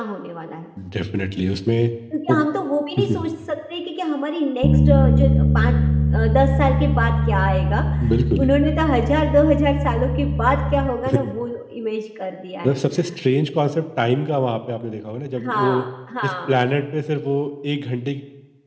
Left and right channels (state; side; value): identical; both; correlation 1.00